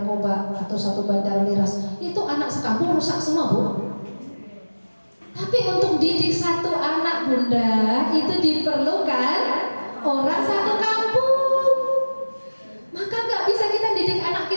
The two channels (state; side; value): inverted; both; correlation -1.00